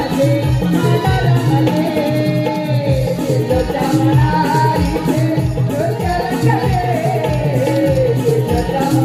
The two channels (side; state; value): both; identical; correlation 1.00